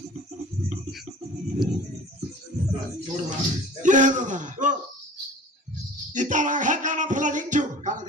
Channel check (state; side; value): normal; both; correlation 0.42